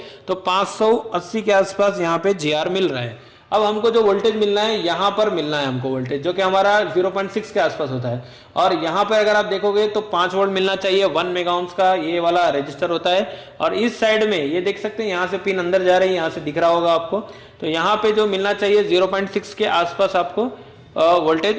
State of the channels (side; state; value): both; identical; correlation 1.00